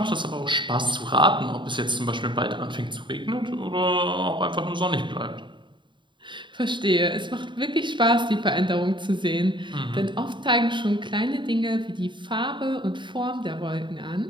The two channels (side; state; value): left; late; 0.23 ms